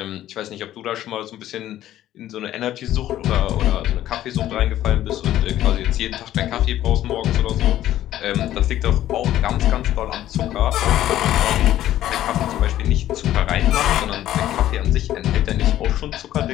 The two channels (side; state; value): right; quieter; 13.0 dB